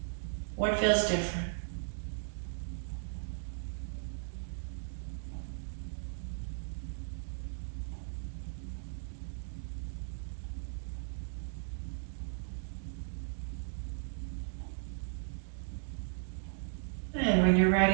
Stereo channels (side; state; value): left; silent; digital silence